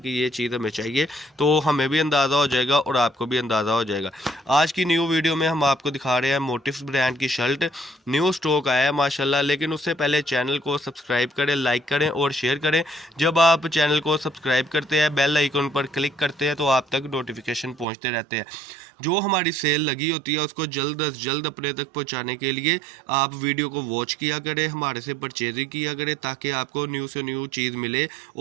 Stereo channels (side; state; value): left; drops out; at 17.9 s